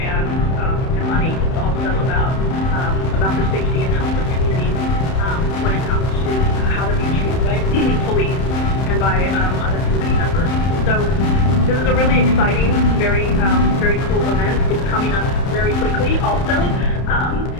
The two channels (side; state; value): right; late; 31 ms